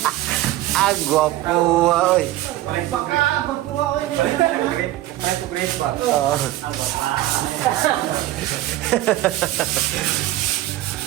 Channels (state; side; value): quieter; left; 15.3 dB